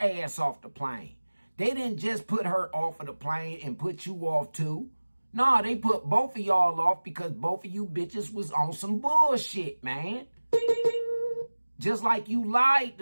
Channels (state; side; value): inverted; both; correlation -1.00